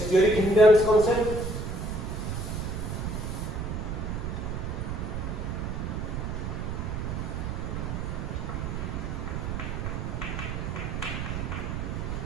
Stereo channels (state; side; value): noise; right; rumble, 3 dB below the sound